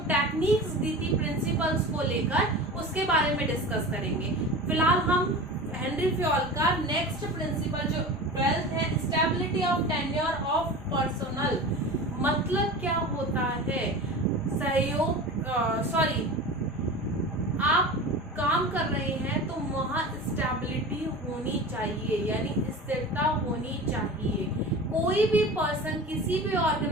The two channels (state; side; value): normal; both; correlation 0.33